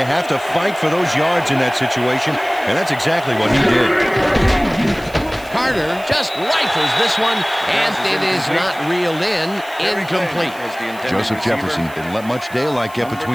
have to fight for those yards in that situation, and that's exactly what he did. Carter just rifles this one, and it is not reeled in. Incomplete. Joseph Jefferson didn't let much daylight get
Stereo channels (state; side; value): noise; right; hiss, 21 dB below the sound